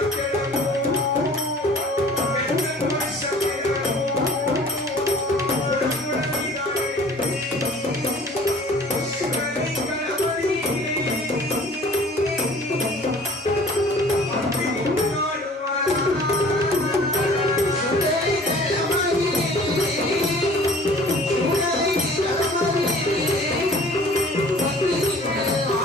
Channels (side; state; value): both; normal; correlation 0.50